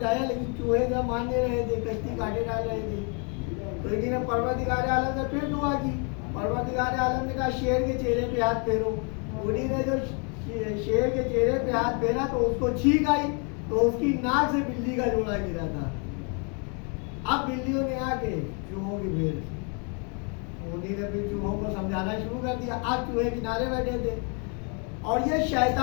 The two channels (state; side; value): quieter; right; 36.5 dB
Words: لیکن چوہے کا مان نہیں رہے تھے, کشتی کاٹے ڈال رہے تھے. تو انہی نے پروردگار عالم سے پھر دعا کی. پروردگار عالم نے کہا شیر کے چہرے پہ ہاتھ پھیرو. انہی نے جو شیر کے چہرے پہ ہاتھ پھیرا تو اس کو چھینک آئی تو اس کی ناک سے بلی کا جوڑا گرا تھا. اب بلیوں نے آ کے چوہوں کی بھیڑ, انہی نے پھر چوہوں کو سمجھانا شروع کر دیا. اب چوہے کنارے بیٹھے تھے اور یہ